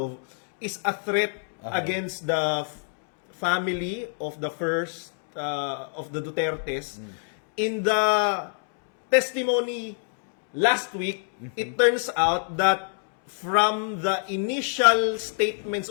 is a threat against the family of the first of the Dutertes. In the testimony last week, it turns out that from the initial statements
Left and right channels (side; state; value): right; silent; 60 dB below the other